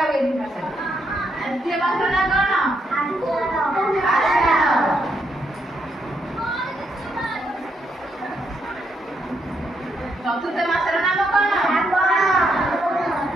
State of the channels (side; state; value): both; normal; correlation 0.78